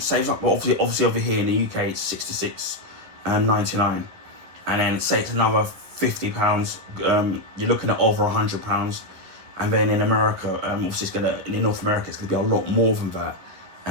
well, obviously over here in the UK it's $66.99, and then say it's another £50, you're looking at over £100. And then in America, obviously in North America it's gonna be a lot more than that,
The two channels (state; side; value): late; left; 11 ms